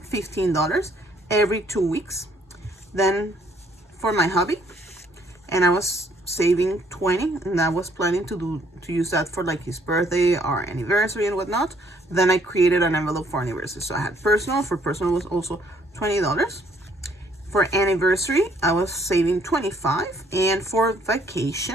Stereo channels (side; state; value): both; normal; correlation 0.65